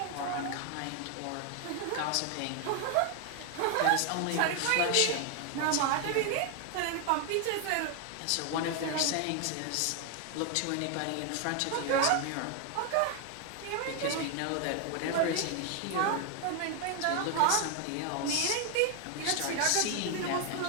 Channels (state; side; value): different; both; correlation 0.00